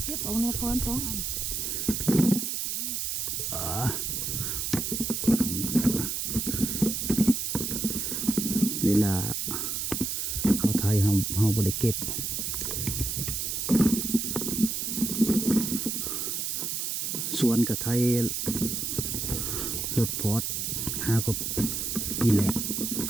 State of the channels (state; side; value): noise; right; hiss, 1 dB below the sound